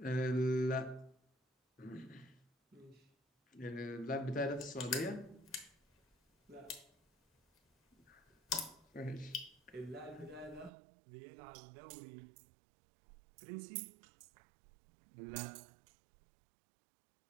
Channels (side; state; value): left; drops out; at 10.7 s